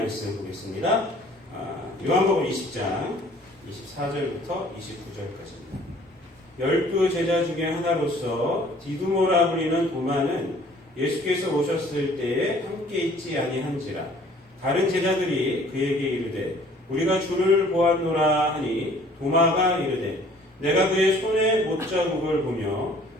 보겠습니다. 요한복음 20장 24절부터 29절까지입니다. 12 제자 중에 하나로서 디두모라 불리는 도마는 예수께서 오셨을 때에 함께 있지 아니한지라. 다른 제자들이 그에게 이르되 우리가 주를 보았노라 하니 도마가 이르되 내가 그의 손에 못자국을 보며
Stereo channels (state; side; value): normal; both; correlation 0.55